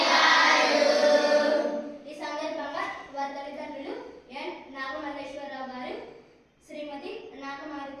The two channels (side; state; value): both; identical; correlation 1.00